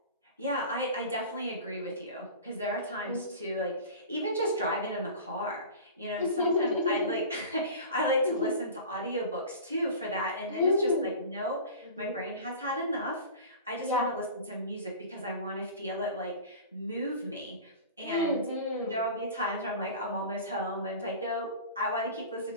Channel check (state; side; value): inverted; both; correlation -0.36